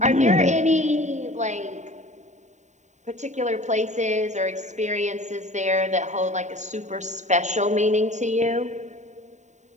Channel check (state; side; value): late; left; 0.34 ms